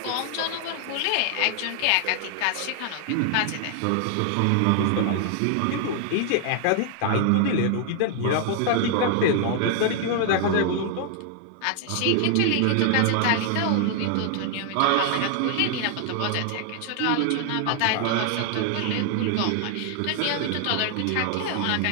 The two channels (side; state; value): both; different; correlation 0.00